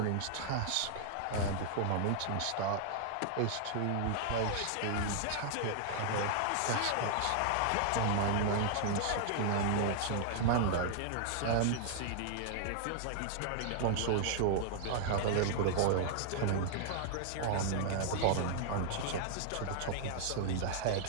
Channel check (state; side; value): different; both; correlation -0.01